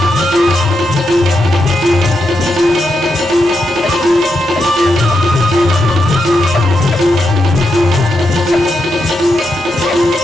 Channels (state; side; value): normal; both; correlation 0.84